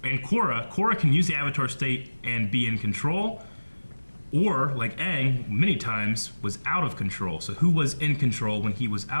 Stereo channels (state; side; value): inverted; both; correlation -1.00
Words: and Korra can use the Avatar state and be in control. Or, like Aang, many times, was out of control. So who was in control when he was